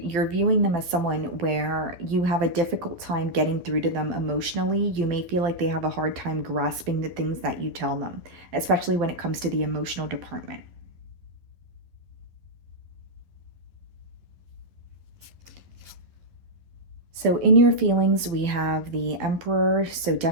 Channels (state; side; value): late; left; 12 ms